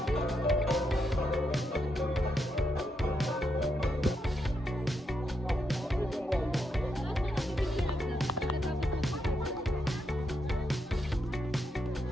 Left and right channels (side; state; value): both; normal; correlation 0.81